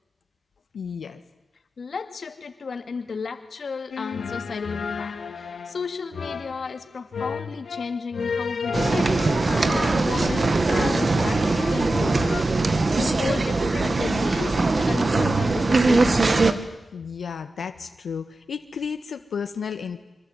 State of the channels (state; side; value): normal; both; correlation 0.92